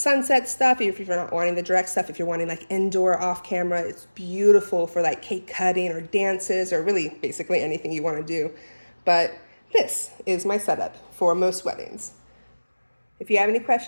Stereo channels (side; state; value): both; inverted; correlation -1.00